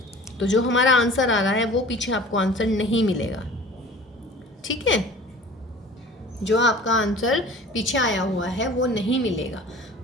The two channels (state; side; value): normal; both; correlation 0.44